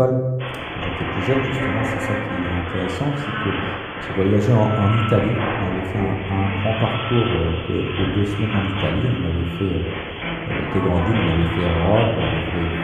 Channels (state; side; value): identical; both; correlation 1.00